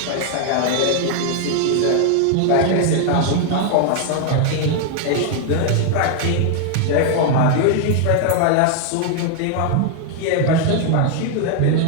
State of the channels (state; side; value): different; both; correlation 0.00